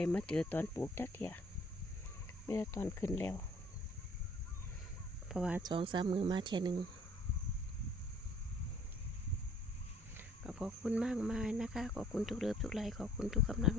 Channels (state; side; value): normal; both; correlation 0.56